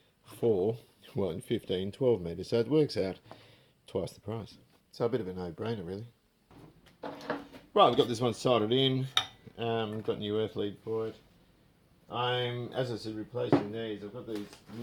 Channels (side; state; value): both; identical; correlation 1.00